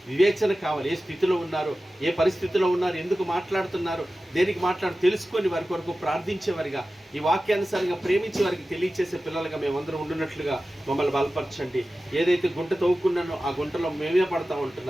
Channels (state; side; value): normal; both; correlation 0.95